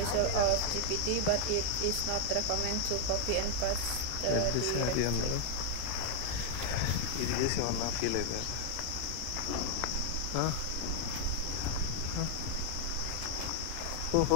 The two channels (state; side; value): different; both; correlation 0.00